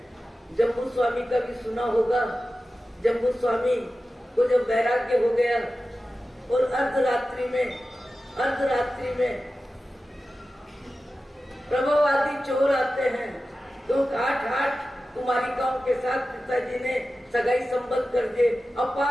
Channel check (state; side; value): normal; both; correlation 0.94